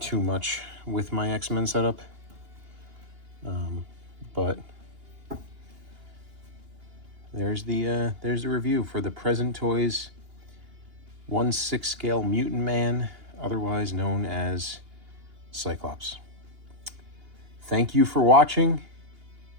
too much with my X-Men setup. But there's the review for the Present Toys 1/6 scale Mutant Man, otherwise known as Cyclops. Thank you for watching,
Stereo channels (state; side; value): late; left; 2.8 ms